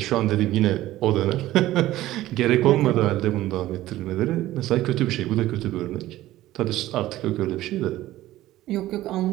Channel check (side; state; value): left; quieter; 15.4 dB